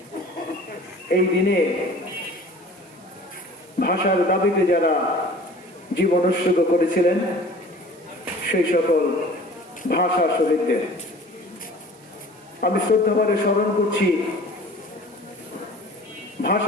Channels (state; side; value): noise; right; hiss, 28 dB below the sound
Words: এই দিনে ভাষার দাবিতে যারা জীবন উৎসর্গ করেছিলেন সেই সকল ভাষা শহীদদের আমি শ্রদ্ধাভরে স্মরণ করছি।